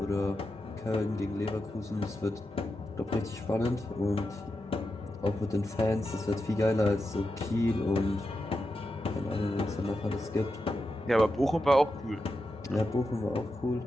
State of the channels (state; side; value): normal; both; correlation 0.88